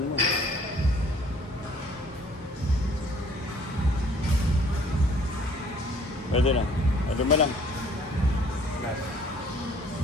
mo. Pwede na. Pwede mo lang.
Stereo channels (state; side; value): normal; both; correlation 0.57